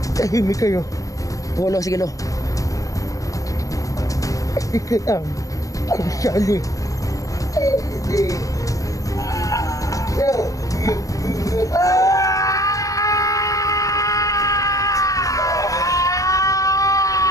Tahimik kayo. Oo, Lo. Sige, Lo. Ikaw ang sali.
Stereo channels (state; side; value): late; right; 0.16 ms